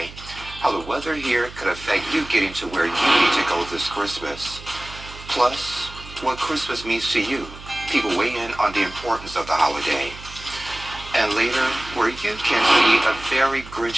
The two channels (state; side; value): noise; right; hum, 16 dB below the sound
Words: How the weather here could affect you getting to where you need to go this Christmas. Plus, what Christmas means to you. People weigh in on the importance of the holiday. And later, where you can see a very